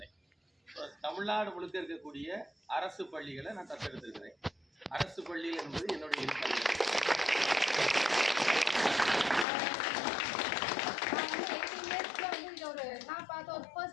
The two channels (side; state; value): right; drops out; at 9.5 s